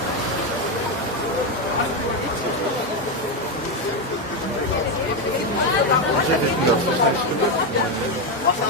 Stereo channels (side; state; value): both; normal; correlation 0.08